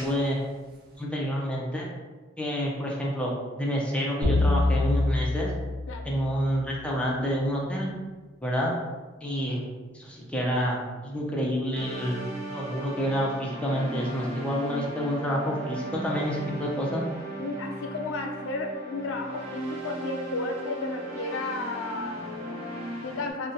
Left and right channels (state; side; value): normal; both; correlation 0.61